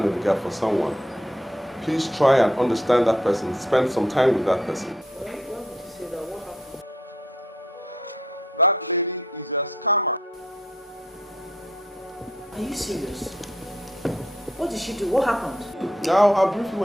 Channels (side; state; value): both; normal; correlation 0.71